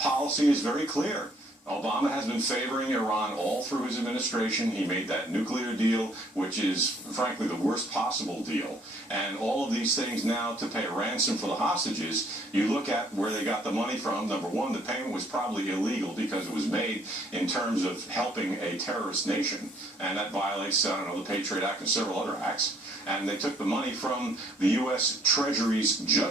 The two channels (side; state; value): both; normal; correlation 0.63